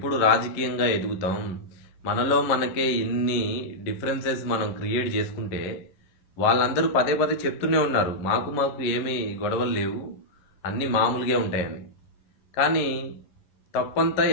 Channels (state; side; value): late; right; 11 ms